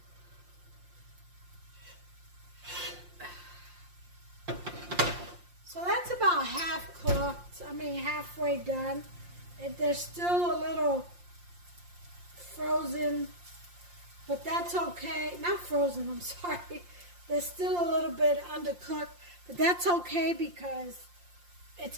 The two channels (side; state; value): left; late; 5.7 ms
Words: So that's about half cooked. I mean halfway done. There's still a little frozen, but that's okay. Not frozen, I'm sorry. There's still a little bit undercooked, but that's okay because it's